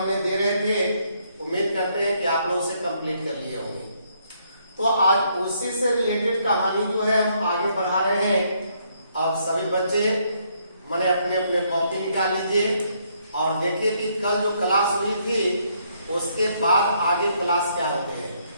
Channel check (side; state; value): both; inverted; correlation -0.71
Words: दे रहे थे, उम्मीद करते हैं कि आप लोग उसे कंप्लीट कर लिए होंगे। तो आज उसी से रिलेटेड कहानी जो है हम आगे बढ़ा रहे हैं। अब सभी बच्चे मैंने अपने अपने कॉपी निकाल लीजिए और देखिए कि कल जो क्लास हुई थी उसके बाद आगे क्लास क्या होते हैं।